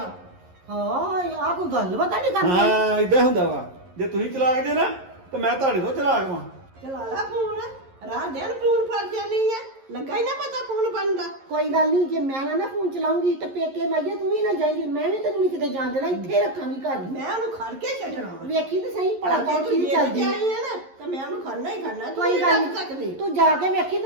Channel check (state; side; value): late; left; 11 ms